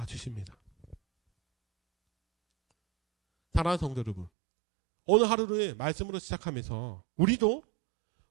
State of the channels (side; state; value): left; drops out; at 4.3 s